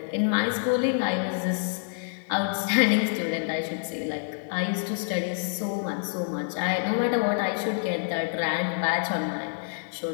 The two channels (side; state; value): right; silent; digital silence